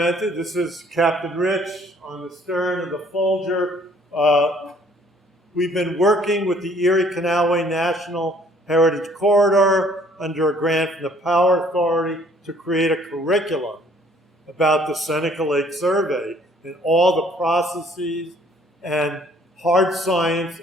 this is Captain Rich on the stern of the Folger. We've been working with the Erie Canalway National Heritage Corridor under a grant from the Power Authority to create a curriculum about the Seneca Lake Survey and all the processes and hard science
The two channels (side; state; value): both; normal; correlation 0.60